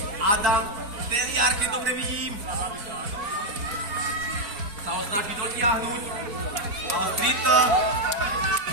Adam Teliar, keď dobre vidím. Sa ho snaží dotiahnuť. Streeter,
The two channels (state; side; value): late; left; 4.5 ms